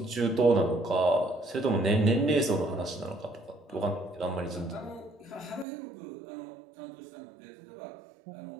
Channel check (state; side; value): drops out; left; at 5.7 s